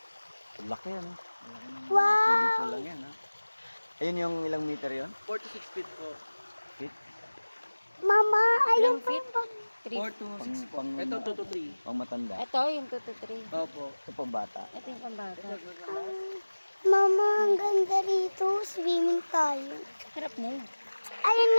Laki yan. Wow! Dito lang yan. Ayun yung ilang meter yon? 4 to 6 feet po. Feet? Mama, ayun pa yung 4 to 6 po. Ito 2 to 3. Pang matanda. Ito, yung 2 to 3. Opo. Ito pang bata. Ito yung pambata. Mama, ang ganda rito. Swimming tayo. Harap mo. Ayun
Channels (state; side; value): inverted; both; correlation -1.00